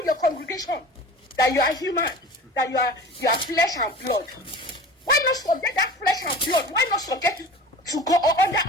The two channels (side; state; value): both; normal; correlation 0.38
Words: your congregation? That you are human, that you are flesh and blood. Why not subject that flesh and blood? Why not subject it to go